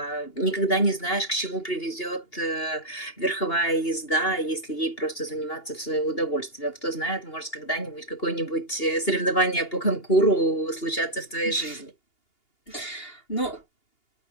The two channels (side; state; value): right; late; 2.8 ms